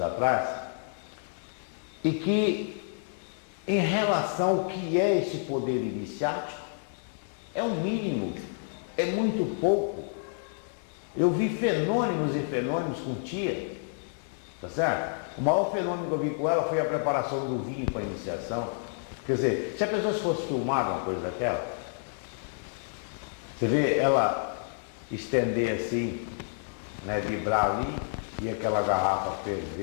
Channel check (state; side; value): silent; right; digital silence